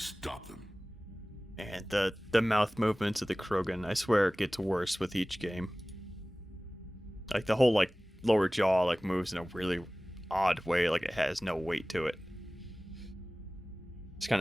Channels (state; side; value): normal; both; correlation 0.98